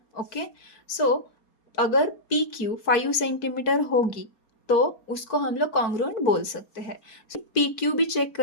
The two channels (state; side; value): late; right; 4.5 ms